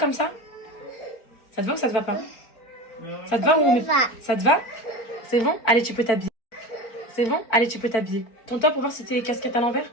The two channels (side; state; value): right; late; 4.5 ms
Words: ça? Ça te va ou ça te va pas? Ça te va ou on met... Ça te va? C'est bon? Allez, tu peux t'habiller. C'est bon? Allez, tu peux t'habiller. Tourne-toi pour voir si t'es casquette à l'envers.